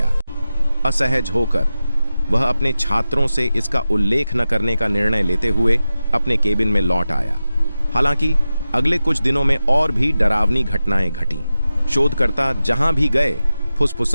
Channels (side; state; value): both; inverted; correlation -0.93